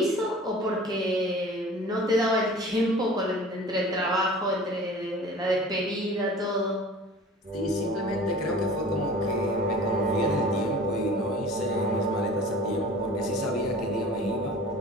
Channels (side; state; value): both; normal; correlation 0.43